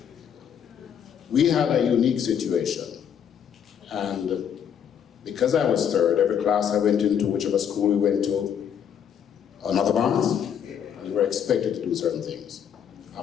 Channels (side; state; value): right; quieter; 8.4 dB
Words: We had a unique situation, and because I was third, every class I went into, whichever school we went to, another Barnes, we were expected to do certain things.